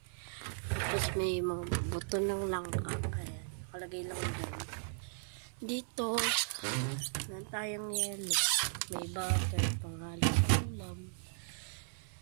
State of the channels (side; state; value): left; silent; 53 dB below the other